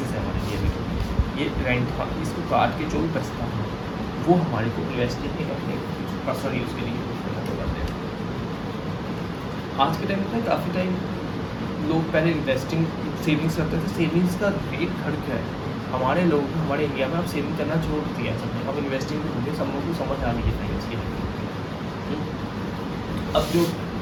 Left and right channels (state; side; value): identical; both; correlation 1.00